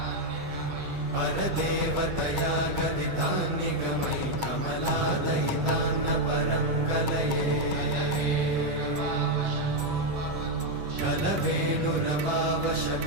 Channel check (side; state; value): left; late; 8.4 ms